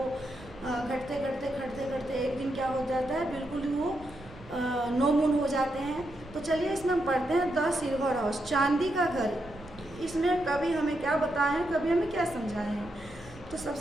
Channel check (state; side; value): noise; right; rumble, 19 dB below the sound